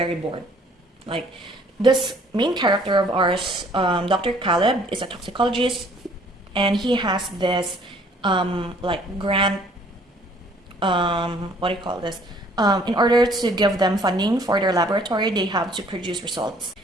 bored. Like, this main character of ours, Dr. Caleb, is a toxicologist, and he has this grant, what do you call this? In order to give them funding for their laboratory, they have to produce results.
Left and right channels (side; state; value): both; normal; correlation 0.58